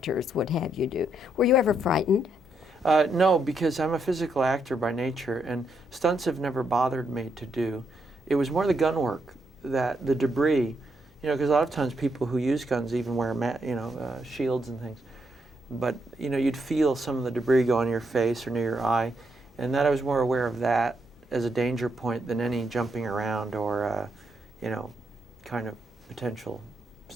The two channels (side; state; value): both; normal; correlation 0.78